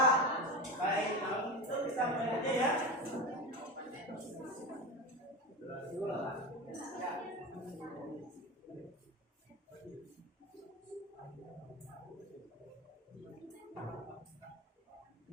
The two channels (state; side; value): normal; both; correlation 0.23